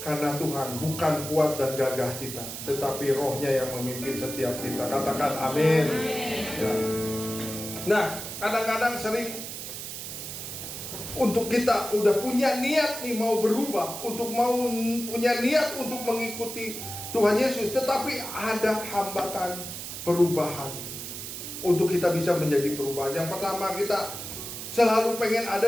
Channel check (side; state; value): right; noise; hiss, 8 dB below the sound